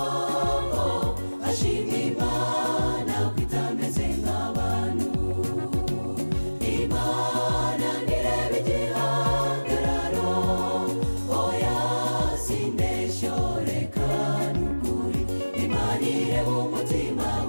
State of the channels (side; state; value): both; inverted; correlation -1.00